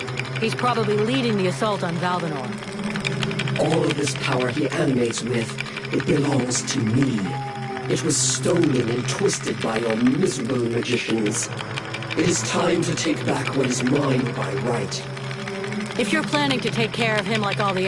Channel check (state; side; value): identical; both; correlation 1.00